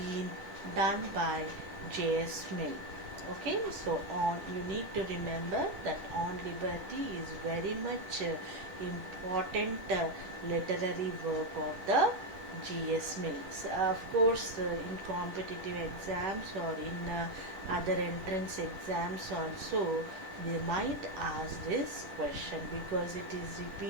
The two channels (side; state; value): left; late; 10 ms